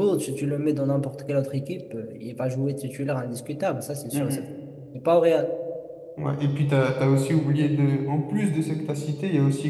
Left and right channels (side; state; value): both; identical; correlation 1.00